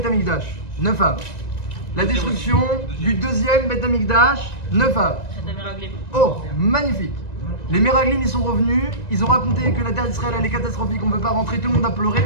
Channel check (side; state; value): right; late; 1.9 ms